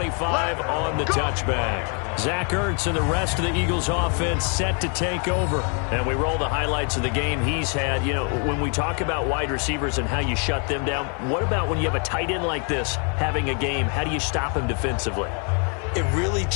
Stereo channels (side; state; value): right; quieter; 39.1 dB